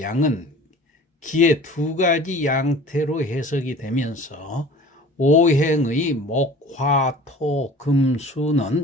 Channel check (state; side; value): normal; both; correlation 0.44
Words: 양은 기의 두 가지 양태로 해석이 되면서 오행의 목, 화, 토, 금,